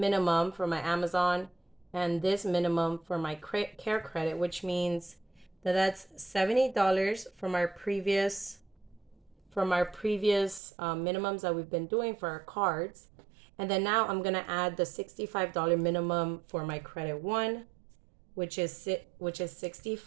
for my Amazon and this minimum for my care credit, which means that that's $70 from from our previous minimums that we've been doing for our cards. And then now I'm gonna add the $65 minimum for my credit one, which is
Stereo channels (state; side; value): drops out; left; at 10.6 s